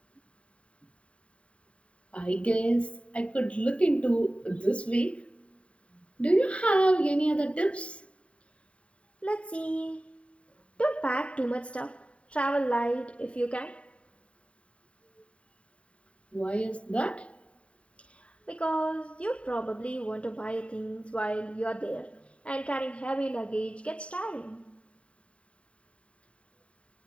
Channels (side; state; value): right; late; 0.062 ms